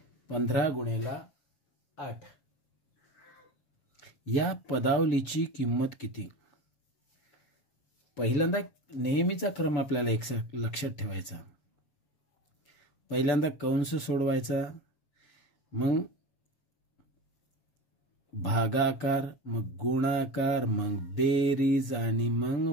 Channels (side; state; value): right; late; 7.3 ms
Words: 15 गुणेला 8 या पदावलीची किंमत किती. पहिल्यांदा नेहमीचा क्रम आपल्याला एक लक्षात ठेवायचा. पहिल्यांदा कंस सोडवायचा, मग भागाकार, मग गुणाकार, मग बेरीज आणि